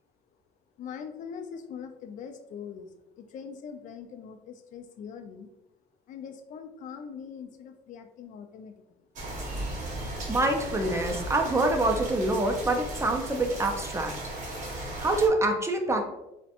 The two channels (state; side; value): normal; both; correlation 0.52